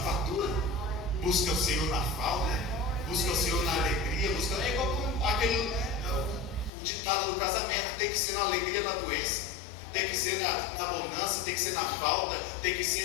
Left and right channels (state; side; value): drops out; right; at 6.7 s